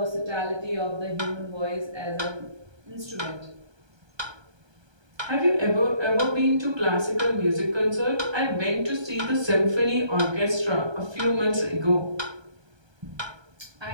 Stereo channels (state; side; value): late; left; 1.3 ms